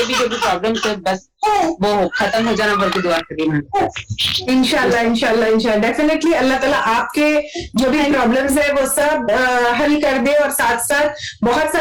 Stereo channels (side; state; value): both; identical; correlation 1.00